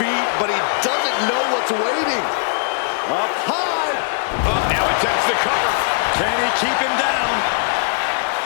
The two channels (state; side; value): silent; right; digital silence